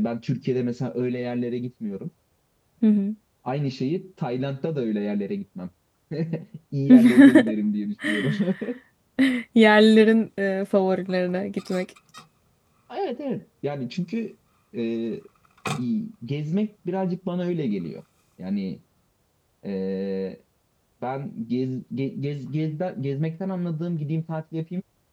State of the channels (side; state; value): both; identical; correlation 1.00